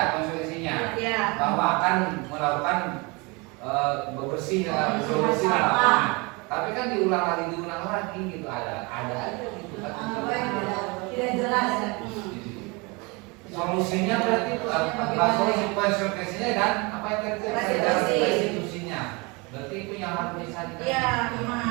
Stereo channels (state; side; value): quieter; left; 27.6 dB